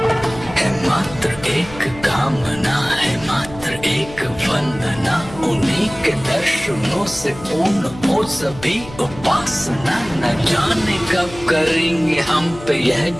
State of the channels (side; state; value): left; noise; hum, 16 dB below the sound